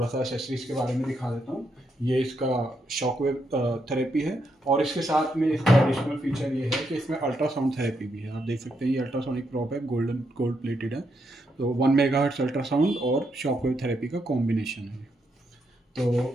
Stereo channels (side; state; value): both; normal; correlation 0.79